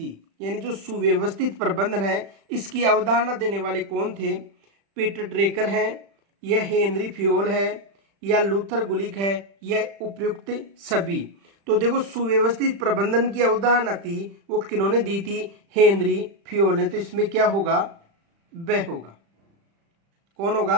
यानी जो सुव्यवस्थित प्रबंधन है इसकी अवधारणा देने वाले कौन थे? पीटर ड्रेकर है, यह हेनरी फ्योल है, या लूथर गुलिक है, या उपयुक्त सभी। तो देखो, सुव्यवस्थित प्रबंधन की अवधारणा थी वो किन्होंने दी थी? हेनरी फ्योल ने। तो इसमें क्या होगा? वह होगा। कौन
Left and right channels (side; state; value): left; late; 35 ms